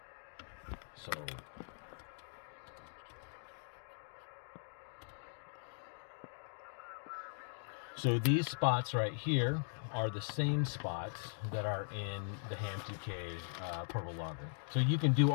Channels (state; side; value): silent; right; digital silence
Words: So these spots right here are the same spots that are in the Ham2K portable logger. So you can do